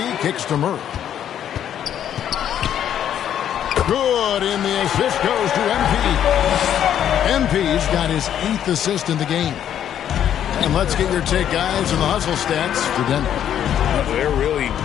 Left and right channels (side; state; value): right; quieter; 10.0 dB